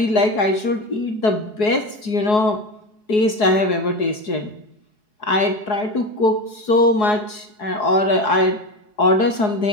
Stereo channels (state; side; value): late; right; 4.7 ms